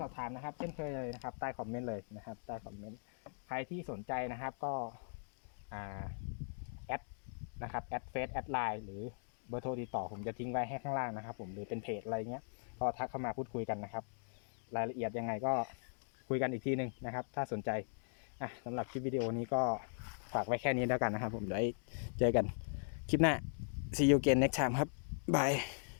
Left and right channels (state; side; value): silent; right; digital silence